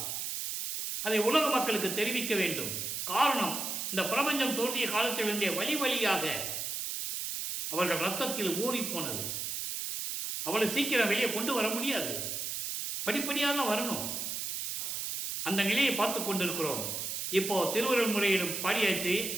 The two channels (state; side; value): noise; right; hiss, 3 dB below the sound